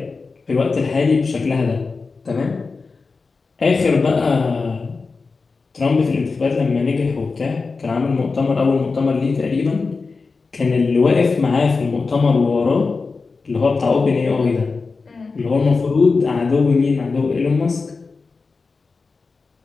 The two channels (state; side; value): quieter; right; 4.3 dB